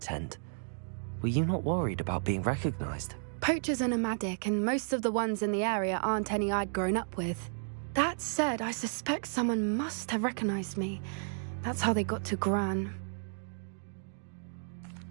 Were you not worried about being recognized? Poachers are nomadic, and most of the ones in the area aren't any I'd grown up with. That said, I suspect someone must have recognized me. That's how they got to Gran.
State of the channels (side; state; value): left; silent; digital silence